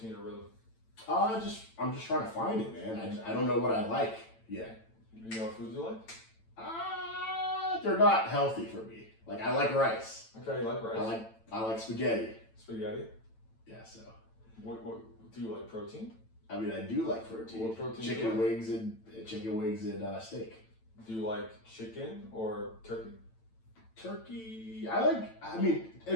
or rhythm? I'm just trying to find it, man. I don't know what I like yet. You know what foods you like? They're not healthy for me. Like I like rice. Okay, you like rice. I like spaghetti. Spaghetti? Yeah. So. What do you like? Protein? I mean, I do like protein. What protein? Chicken wings and steak. Do you like chicken or turkey? Turkey,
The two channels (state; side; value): late; right; 9.0 ms